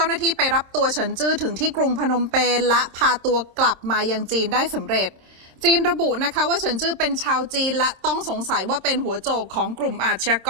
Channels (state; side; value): late; left; 26 ms